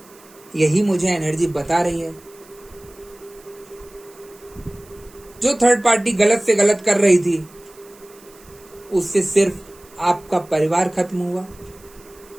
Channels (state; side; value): noise; right; hiss, 25 dB below the sound